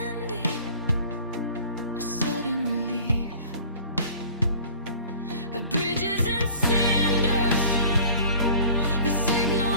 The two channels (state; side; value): inverted; both; correlation -0.47